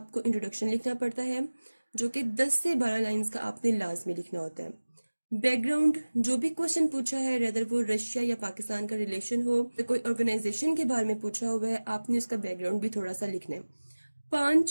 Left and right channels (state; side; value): inverted; both; correlation -1.00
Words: इंट्रोडक्शन लिखना पड़ता है जो कि 10 से 12 लाइंस का आपने लाजमी लिखना होता है। बैकग्राउंड, जो भी क्वेश्चन पूछा है, रेदर वो रशिया या पाकिस्तान का रिलेशन हो, तो कोई ऑर्गेनाइजेशन के बारे में पूछा हुआ है, आपने उसका बैकग्राउंड भी थोड़ा सा लिखना है।